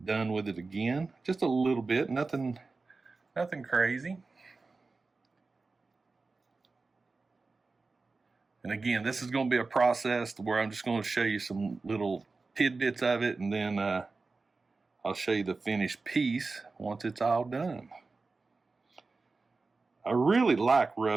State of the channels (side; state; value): left; quieter; 3.9 dB